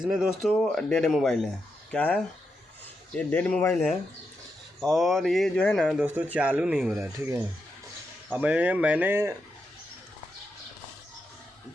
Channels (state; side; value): normal; both; correlation 0.85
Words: दोस्तों डेड मोबाइल है। क्या है ये? डेड मोबाइल है और ये जो है ना दोस्तों चालू नहीं हो रहा है, ठीक है। अब मैंने